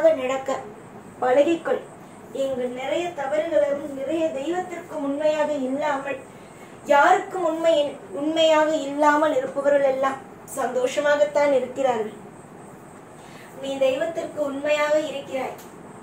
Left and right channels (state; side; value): identical; both; correlation 1.00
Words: நடக்க பழகிக்கொள். இங்கு நிறைய தவறுகளும் நிறைய தெய்வத்திற்கு உண்மையாக இல்லாமல், யாருக்கும் உண்மையாக இல்லாமல் இருப்பவர்கள் எல்லாம் சந்தோஷமாகத்தான் இருக்கிறார்கள். நீ தெய்வத்திற்கு உண்மையாக இருக்கிறாய்.